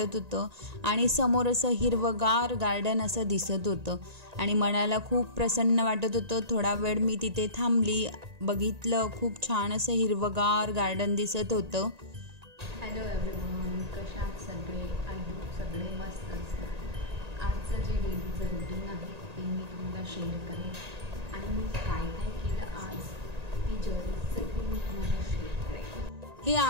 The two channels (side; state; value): left; late; 1.9 ms